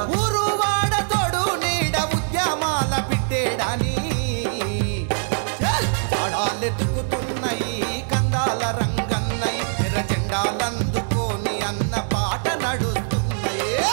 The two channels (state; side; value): silent; left; digital silence